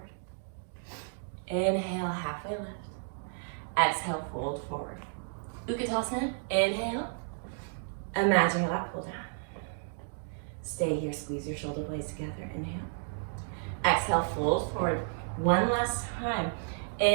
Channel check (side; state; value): left; silent; digital silence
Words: Inhale. Halfway lift. Exhale. Fold forward. Utkatasana. Inhale. Imagine your lap pull down. Stay here. Squeeze your shoulder blades together. Inhale. Exhale. Fold forward. One last time.